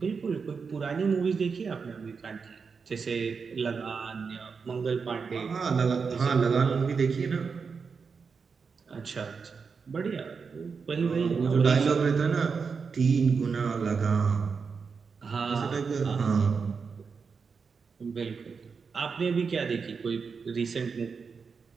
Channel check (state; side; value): quieter; left; 5.4 dB